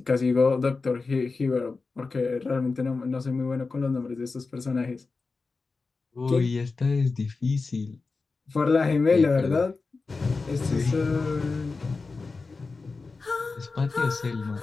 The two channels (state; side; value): quieter; right; 4.1 dB